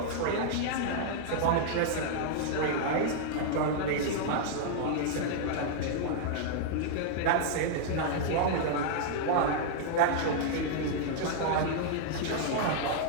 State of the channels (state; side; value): different; both; correlation -0.01